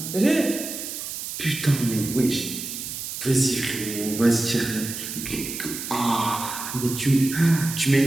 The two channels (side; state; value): right; noise; hiss, 7 dB below the sound